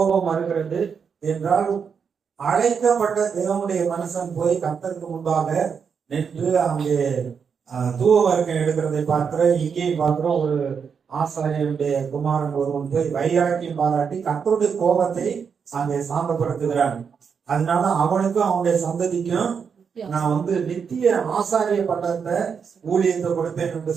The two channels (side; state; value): left; quieter; 6.4 dB